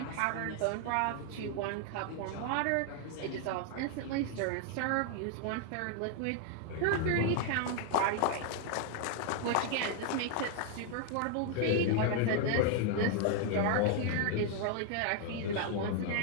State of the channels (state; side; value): different; both; correlation 0.00